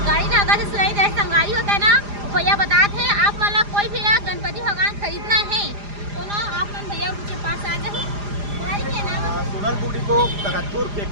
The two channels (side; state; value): left; late; 4.9 ms